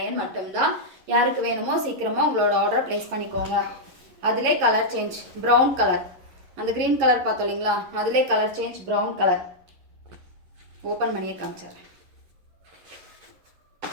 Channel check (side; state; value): left; late; 11 ms